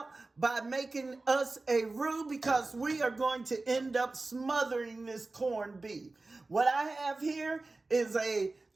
by making us a roux because we are going to end up smothering this corned beef. What I have here is a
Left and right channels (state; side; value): quieter; left; 3.3 dB